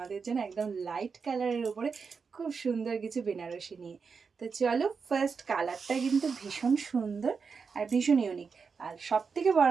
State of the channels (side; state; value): left; quieter; 5.4 dB